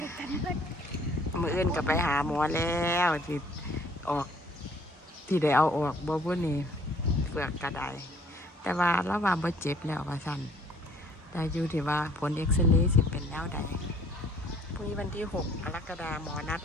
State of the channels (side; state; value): both; normal; correlation 0.58